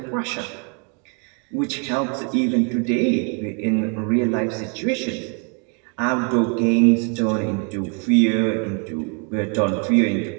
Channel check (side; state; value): left; quieter; 37.3 dB